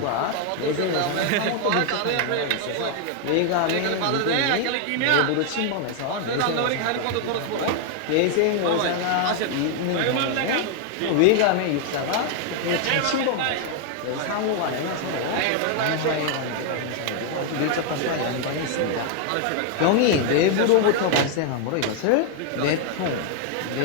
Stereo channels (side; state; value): both; different; correlation 0.00